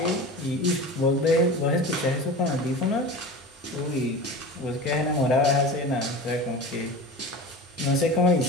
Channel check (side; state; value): both; normal; correlation 0.32